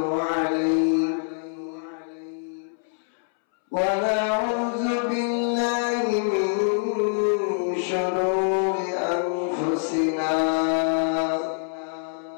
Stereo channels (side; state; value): right; silent; 62 dB below the other